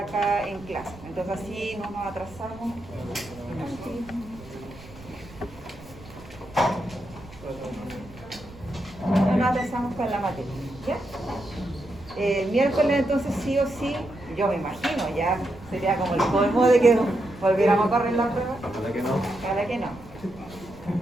en clase. Entonces así no nos atrasamos. No nos atrasamos con la materia, ¿ya? El miércoles entonces sí o sí, yo me imagino, ya sería como el colmo de que volviéramos a correr la prueba. Ojalá que no. Ojalá que no.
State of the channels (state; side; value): noise; right; rumble, 19 dB below the sound